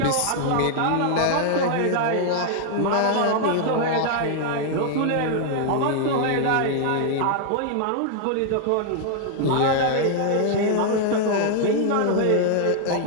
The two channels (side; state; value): both; different; correlation -0.01